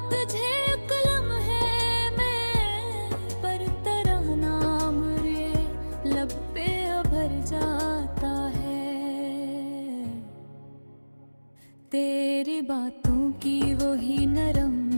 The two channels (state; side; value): inverted; both; correlation -1.00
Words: तुझे एक लम्हे में, पर तेरा नाम रे लब पे भर जाता है। तेरी बातों की वही